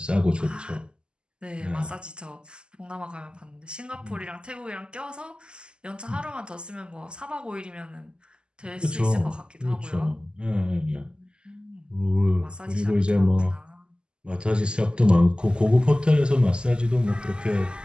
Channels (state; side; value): late; left; 0.049 ms